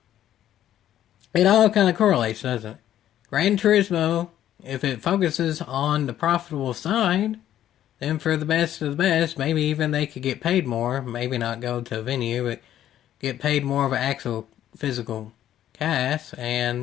It all kind of correlates, doesn't it? Gran Turismo, if it focuses on the profitable side, then for the best of the best, maybe even they could get paid more. Maybe not go to a venue, but get paid more of an actual physical cash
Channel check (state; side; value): quieter; right; 11.7 dB